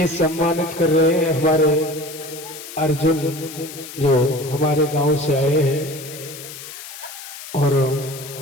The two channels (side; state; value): left; noise; hiss, 13 dB below the sound